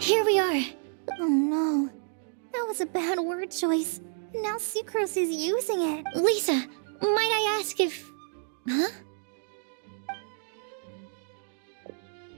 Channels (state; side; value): silent; left; digital silence